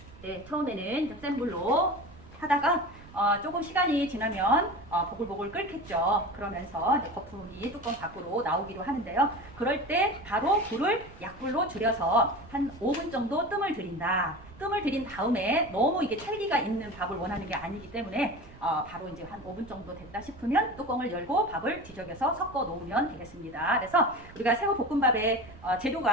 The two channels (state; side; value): noise; right; rumble, 20 dB below the sound